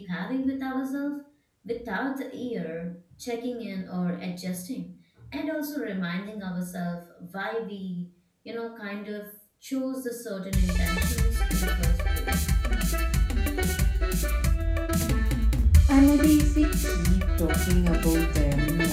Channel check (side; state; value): both; identical; correlation 1.00